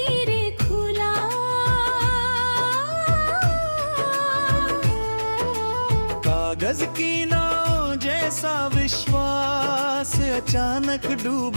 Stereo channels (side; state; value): both; inverted; correlation -1.00